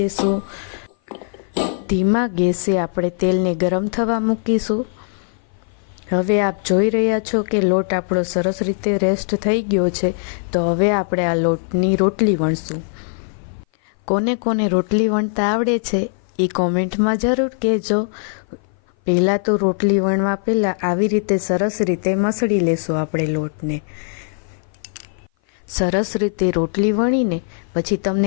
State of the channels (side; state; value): right; silent; 57 dB below the other